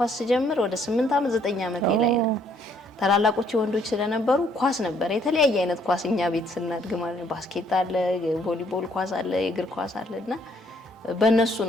ጀምር ወደ 8 ዓመት 9 ዓመቴ ላይ ነው። ታላላቆቹ ወንዶች ስለነበሩ ኳስ ነበር የተለያየ አይነት ኳስ እኛ ቤት ስናድግ ማለት ባስኬት አለ፣ ቮሊቦል ኳስ አለ፣ የእግር ኳስ አለና በእነሱ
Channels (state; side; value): normal; both; correlation 0.66